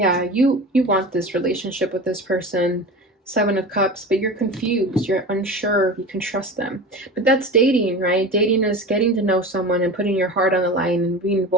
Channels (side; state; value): both; normal; correlation 0.31